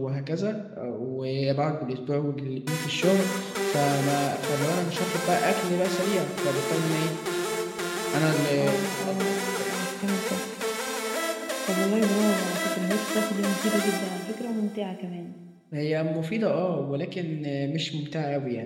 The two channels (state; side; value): identical; both; correlation 1.00